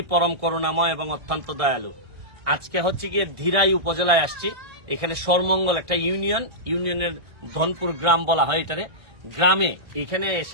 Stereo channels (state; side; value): late; left; 1.6 ms